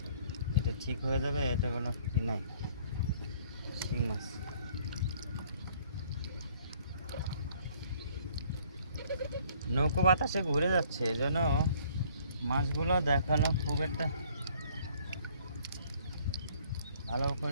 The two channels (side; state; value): both; inverted; correlation -0.58